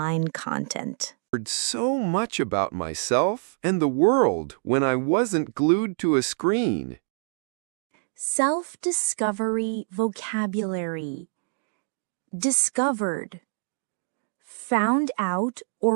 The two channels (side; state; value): left; silent; digital silence